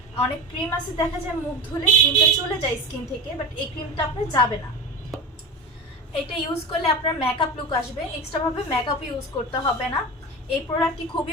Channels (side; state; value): both; normal; correlation 0.27